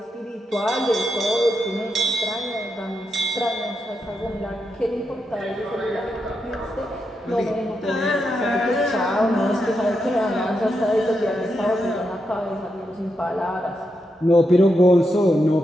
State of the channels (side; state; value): both; normal; correlation 0.84